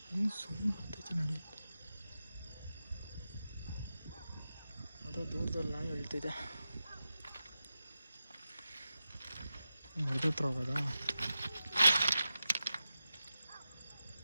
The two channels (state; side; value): inverted; both; correlation -0.92